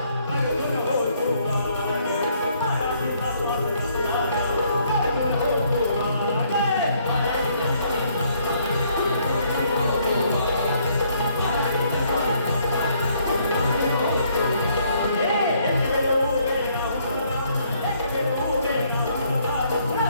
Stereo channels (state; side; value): inverted; both; correlation -0.67